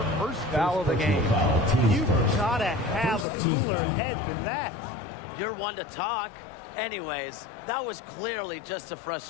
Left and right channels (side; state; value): right; drops out; at 3.2 s